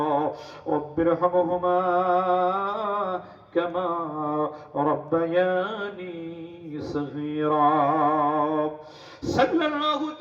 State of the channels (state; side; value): identical; both; correlation 1.00